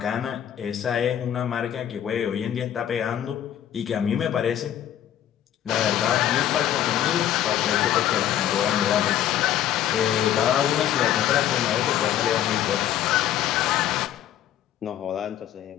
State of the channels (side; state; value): right; quieter; 11.2 dB